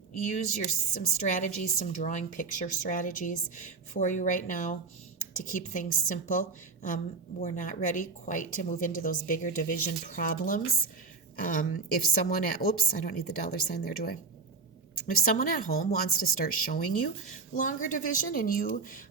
use some strategies, some drawing picture strategies for you right now to keep things simple. We're not ready quite to move into those bigger division problems. If someone I don't need the $sign there, do I? If someone at home wants to start showing you longer division and you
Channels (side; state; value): left; quieter; 4.5 dB